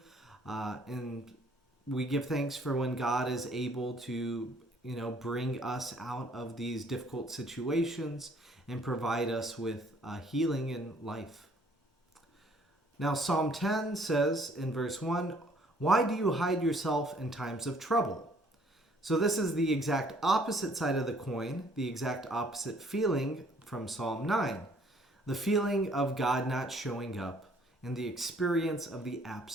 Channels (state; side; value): normal; both; correlation 0.61